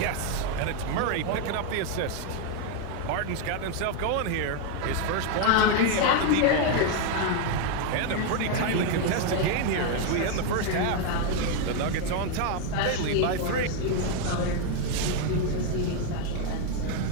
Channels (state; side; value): different; both; correlation 0.01